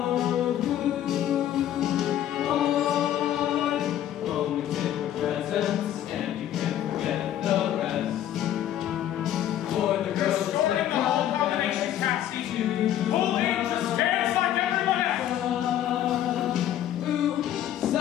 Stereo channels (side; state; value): right; quieter; 11.6 dB